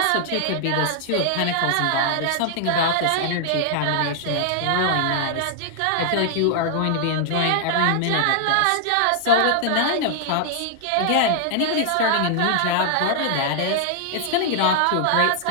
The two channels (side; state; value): both; different; correlation -0.01